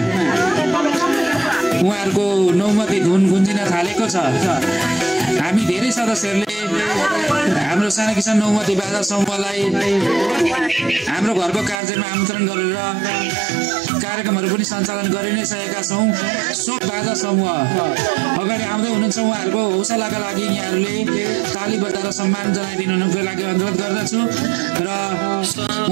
उहाँहरूको नौमती धुन गुन्जिन थालेको छ। हामी धेरै सदस्यहरूले हाम्रो साना किसान नौमती बाजा समूहलाई हाम्रो घरको कार्यमा आमन्त्रण गरेर कार्यक्रमहरू पनि सञ्चालन गरि नै सकेका छौँ। सो बाजा समूह अगाडि आउँदै हुनुहुन्छ, उहाँहरूको हौसलाका लागि यहाँहरूले ताली बजाएर सम्मान जनाइदिनुको लागि अनुरोध गर्दछु र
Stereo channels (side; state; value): left; drops out; at 11.8 s